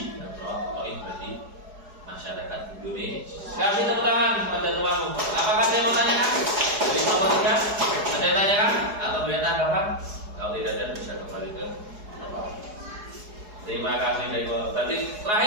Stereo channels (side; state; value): left; late; 4.8 ms